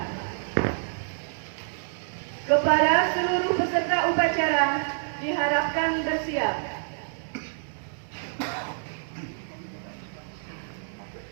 Kepada seluruh peserta upacara diharapkan bersiap.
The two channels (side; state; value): left; silent; digital silence